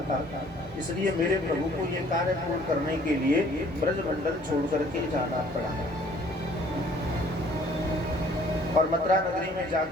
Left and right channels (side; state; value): both; normal; correlation 0.57